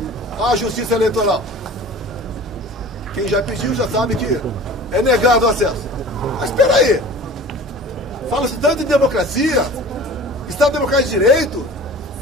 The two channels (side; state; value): both; normal; correlation 0.41